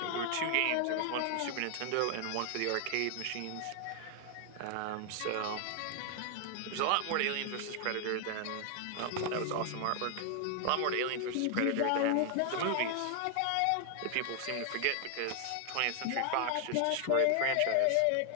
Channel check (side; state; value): both; different; correlation 0.00